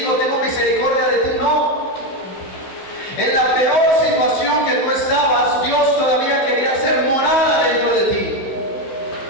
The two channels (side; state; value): right; late; 16 ms